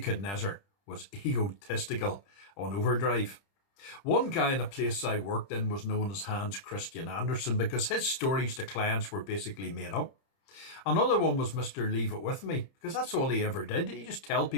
was egotistical on overdrive. One guy in a place I worked in was known as Hans Christian Andersen because his stories to clients were basically made up. Another one was Mr. Leave It With Me, because that's all he ever did. He just tell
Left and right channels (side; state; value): right; late; 30 ms